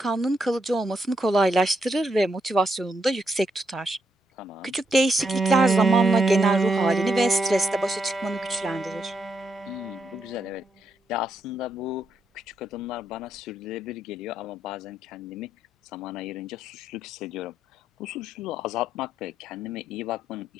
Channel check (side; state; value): both; normal; correlation 0.79